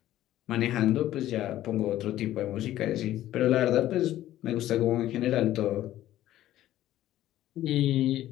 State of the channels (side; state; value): right; quieter; 13.7 dB